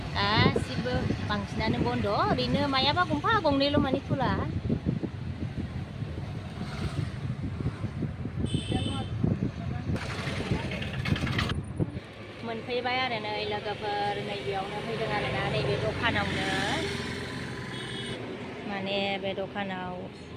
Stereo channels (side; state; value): both; identical; correlation 1.00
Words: गासिबो बांसिनानो बन्द' ओरैनो मायाबा गंफा गंनैल' माने खुला मोनफैबाय आरो नै लोगोफोर नैबेयावनो फैदों आरोना नैबे दखानावनो माने बे दखानाव